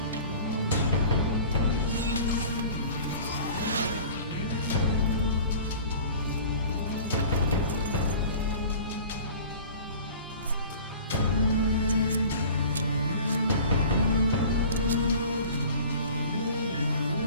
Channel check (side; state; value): both; inverted; correlation -0.43